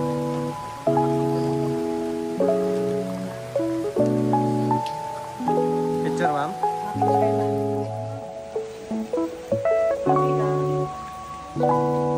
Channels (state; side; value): identical; both; correlation 1.00